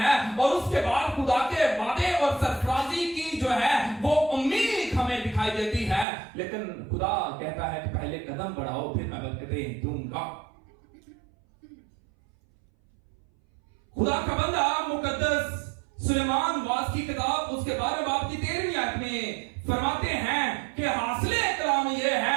और उसके बाद खुदा के वादे और सरफराजी की जो है वो उम्मीद हमें दिखाई देती है। लेकिन खुदा कहता है कि पहले कदम बढ़ाओ, फिर मैं बरकतें दूंगा। खुदा का बंदा मुकद्दस सुलेमान वास की किताब उसके 12वें बाब की 13वीं आयत में फरमाते हैं कि हासिले कलाम यह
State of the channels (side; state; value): left; drops out; at 6.1 s